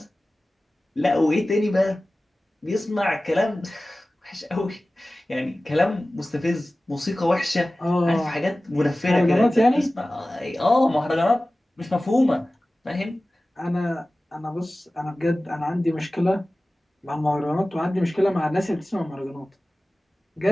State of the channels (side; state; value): both; normal; correlation 0.97